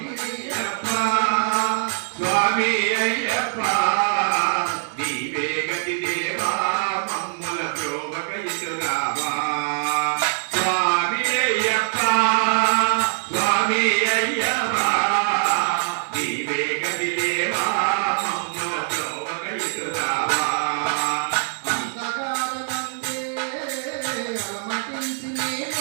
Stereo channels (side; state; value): left; silent; digital silence